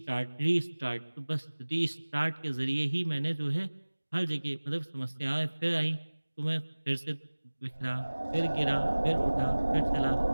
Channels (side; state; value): both; inverted; correlation -1.00